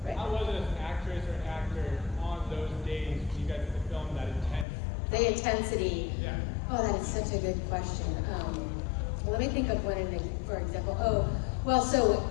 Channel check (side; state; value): right; drops out; at 4.7 s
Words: Right. How was it as an actress or an actor on those days when you guys had to film that intense? The intensity. Yeah. Oh, that is such a good question. Let me think of one, for example. Oh, well, so